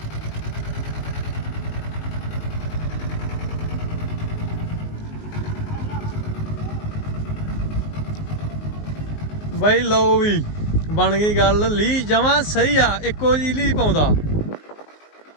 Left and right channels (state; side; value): late; right; 19 ms